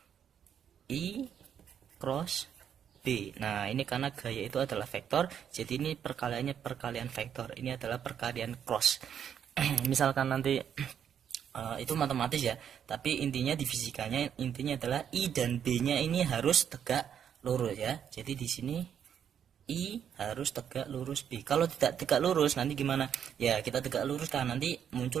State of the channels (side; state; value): left; quieter; 8.6 dB